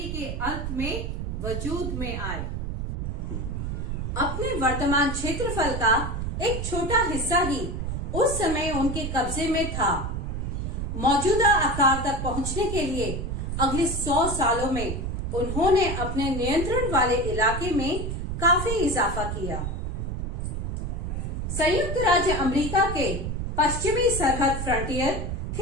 के अंत में वजूद में आए। अपने वर्तमान क्षेत्रफल का एक छोटा हिस्सा ही उस समय उनके कब्जे में था। मौजूदा आकार तक पहुंचने के लिए अगले 100 सालों में उन्होंने अपने नियंत्रण वाले इलाके में काफी इजाफा किया। संयुक्त राज्य अमेरिका के पश्चिमी सरहद फ्रंटियर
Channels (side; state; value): right; noise; rumble, 3 dB below the sound